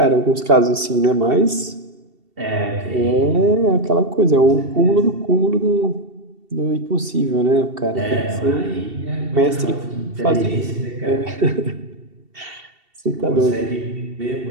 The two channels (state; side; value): late; left; 2.7 ms